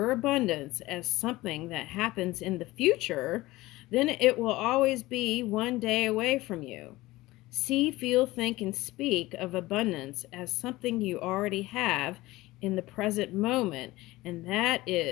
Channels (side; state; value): right; quieter; 18.9 dB